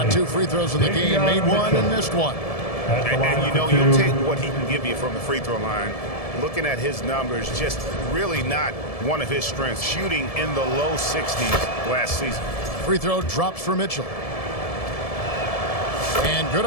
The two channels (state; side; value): late; right; 1.7 ms